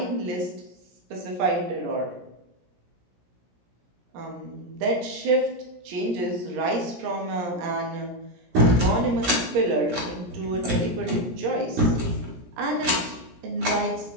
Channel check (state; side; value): late; left; 17 ms